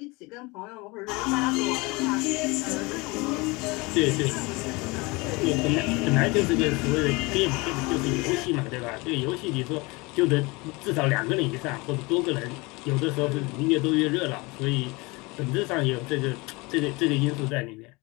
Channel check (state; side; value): quieter; right; 25.2 dB